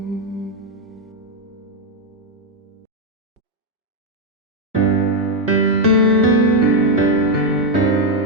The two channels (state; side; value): normal; both; correlation 0.01